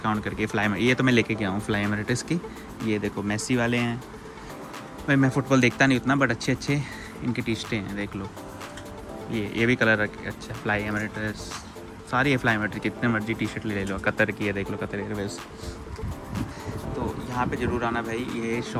करके। फ्लाई ये तो मैं लेके गया हूँ फ्लाई एमिरेट्स की। ये देखो मेसी वाले हैं भाई। मैं फ़ुटबॉल देखता नहीं उतना, बट अच्छे अच्छे इनकी टी शर्टें हैं, देख लो। ये भी कलर अच्छा, फ्लाई एमिरेट्स सारी है। फ्लाई एमिरेट्स कितने मर्जी टी शर्ट ले लो। कतर की है, देख लो, कतर एयरवेज। तो यहाँ पे ज़रूर आना भाई, ये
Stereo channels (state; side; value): identical; both; correlation 1.00